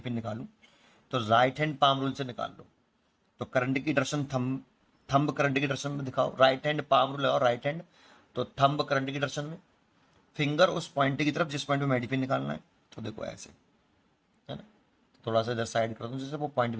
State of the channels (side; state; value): both; identical; correlation 1.00